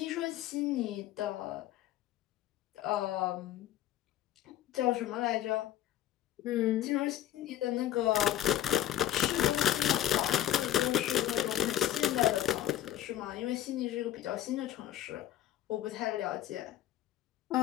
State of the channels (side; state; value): right; quieter; 12.5 dB